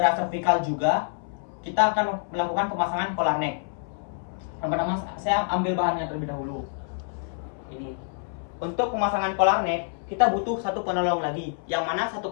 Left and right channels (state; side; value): silent; right; 60 dB below the other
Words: servikal juga, kita akan melakukan pemasangan collar neck. Yang pertama, saya ambil bahannya terlebih dahulu. Ini. Untuk pemasangan collar neck, kita butuh satu penolong lagi. Yang mana